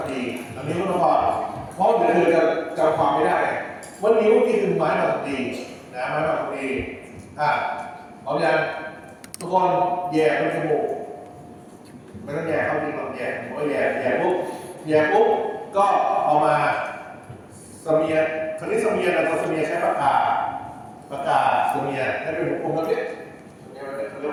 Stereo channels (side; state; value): both; identical; correlation 1.00